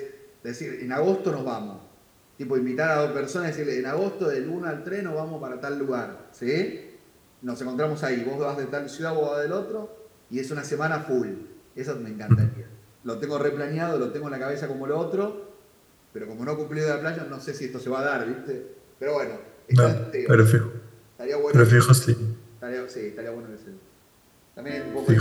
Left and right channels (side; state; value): both; identical; correlation 1.00